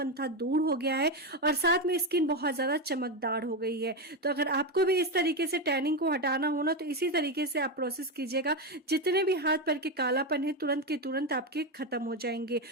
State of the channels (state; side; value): normal; both; correlation 0.11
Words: था, दूर हो गया है और साथ में स्किन बहुत ज़्यादा चमकदार हो गई है। तो अगर आपको भी इस तरीके से टैनिंग को हटाना हो ना, तो इसी तरीके से आप प्रोसेस कीजिएगा। जितने भी हाथ पैर के कालापन है तुरंत के तुरंत आपके खत्म हो जाएंगे।